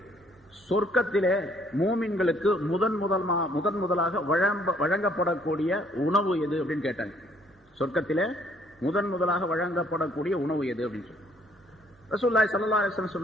சொர்க்கத்திலே மூமின்களுக்கு முதன் முதலாக வழங்கப்படக்கூடிய உணவு எது அப்படின்னு கேட்டாங்க. சொர்க்கத்திலே முதலாக வழங்கப்படக்கூடிய உணவு எது அப்படின்னு சொல்லி ரசூலுல்லாஹி ஸல்லல்லாஹு அலைஹி வஸல்லம்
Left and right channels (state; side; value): normal; both; correlation 0.64